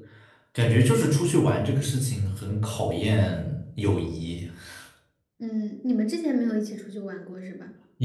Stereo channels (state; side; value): identical; both; correlation 1.00